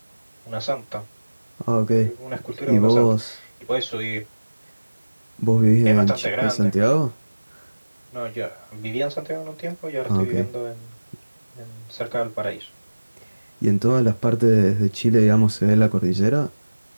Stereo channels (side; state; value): both; inverted; correlation -1.00